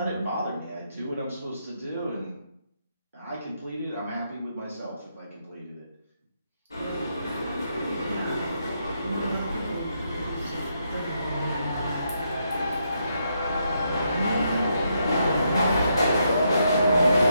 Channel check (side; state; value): both; inverted; correlation -0.78